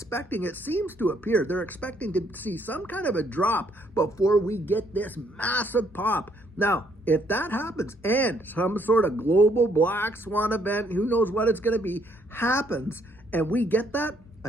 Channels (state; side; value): normal; both; correlation 0.69